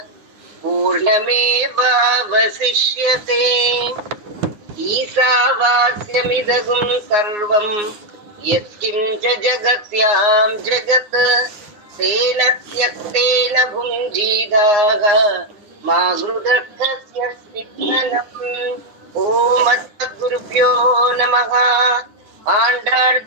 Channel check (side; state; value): left; late; 9.8 ms